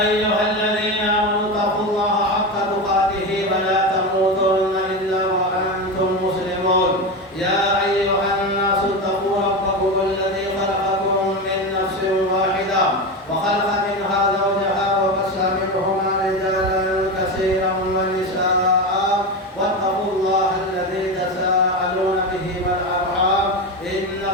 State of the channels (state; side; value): normal; both; correlation 0.19